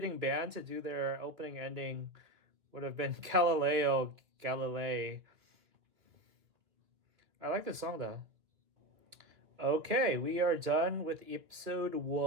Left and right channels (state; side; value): late; left; 2.4 ms